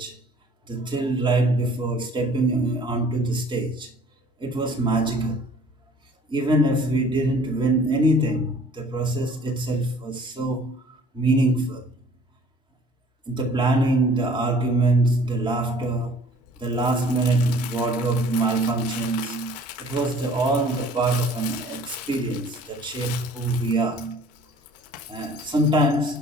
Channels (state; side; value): normal; both; correlation 0.52